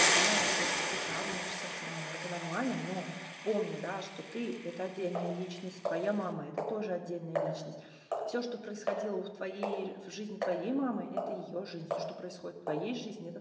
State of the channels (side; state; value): both; identical; correlation 1.00